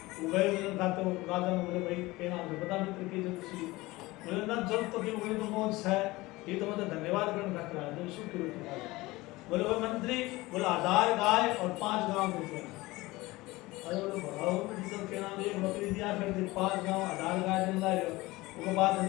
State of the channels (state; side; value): quieter; right; 20.4 dB